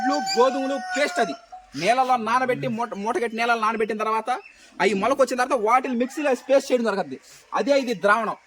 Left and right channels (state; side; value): identical; both; correlation 1.00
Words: గోధుమలు పేస్ట్. అది నీళ్ళలో నానబెట్టి మూటగట్టి నీళ్ళలో నానబెట్టిన తర్వాత అవి మొలకొచ్చిన తర్వాత వాటిని మిక్సీలో పేస్ట్ చేయడం జరుగుతుంది. అదే ఇది ద్రావణం.